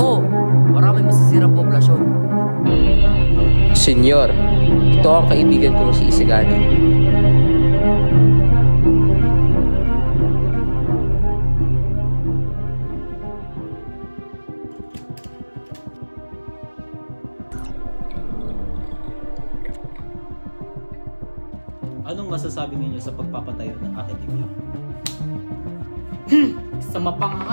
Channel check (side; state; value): both; inverted; correlation -1.00